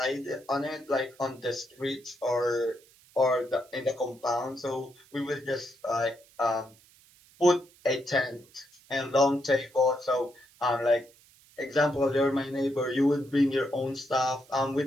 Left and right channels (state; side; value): noise; right; hiss, 28 dB below the sound